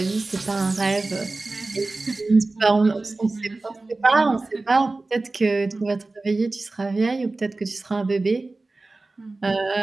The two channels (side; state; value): left; quieter; 3.3 dB